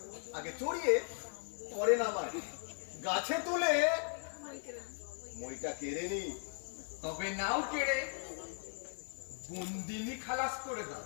আগে চড়িয়ে পরে নামায়, গাছে তুলে মইটা কেড়ে নি। তবে নাও কেড়ে বন্দিনী খালাস করে দাও।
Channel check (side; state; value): right; silent; 52 dB below the other